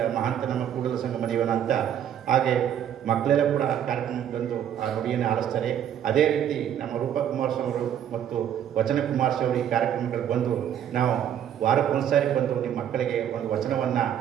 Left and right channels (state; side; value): quieter; left; 9.8 dB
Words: ಮಹಾಂತ ನಮ್ಮ ಕೂಡಲ ಸಂಗಮ ದೇವನ ಅಂತ. ಹಾಗೆ ಮಕ್ಕಳೆಲ್ಲ ಕೂಡ ಕಾರ್ಯಕ್ರಮಕ್ಕೆ ಬಂದು ಆ ನುಡಿಯನ್ನು ಆಲಿಸ್ತಾರೆ. ಅದೇ ರೀತಿ ನಮ್ಮ ರೂಪಾ ಕುಮಾರಸ್ವಾಮಿ ಅವರು ಮತ್ತು ವಚನ ಕುಮಾರಸ್ವಾಮಿ ಅವರು ಈ ಕಾರ್ಯಕ್ರಮಗಳು ಬಂದು ನಾವು ವಾರಕ್ಕೊಂದ್ಸಾರಿ ಬಂದು ನಿಮ್ಮ ಮಕ್ಕಳಿಗೆ ಒಂದು ವಚನವನ್ನು